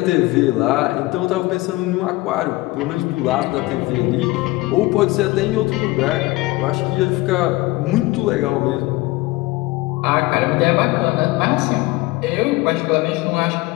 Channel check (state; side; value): quieter; right; 20.6 dB